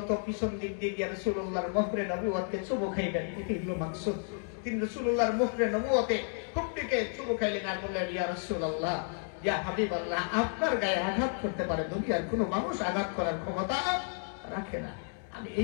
পিছন দিক দিয়ে গিয়ে রাসূলুল্লাহর মুখরে নবুয়তকে চুমু খাইবেন। এটি হলো মাকসুদ। তিনি রাসূলুল্লাহর মুখরে নবুয়তে খুব দিকে চুমু খাইলেন আর বললেন, ইয়া রাসূলুল্লাহ, ইয়া হাবিবাল্লাহ, আপনার গায়ে আঘাত করতে পারে, দুনিয়ার কোনো মানুষ আঘাত করার ক্ষমতা রাখে না। আমি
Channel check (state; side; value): silent; right; 56 dB below the other